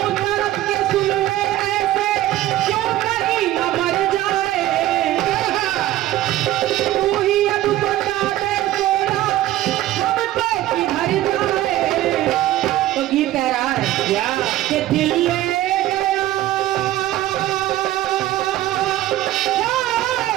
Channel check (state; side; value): quieter; left; 14.6 dB